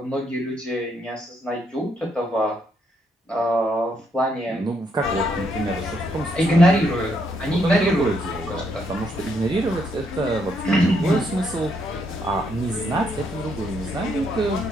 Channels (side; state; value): both; normal; correlation 0.74